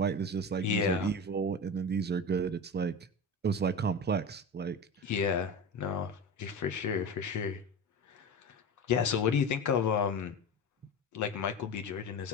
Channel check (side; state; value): both; normal; correlation 0.26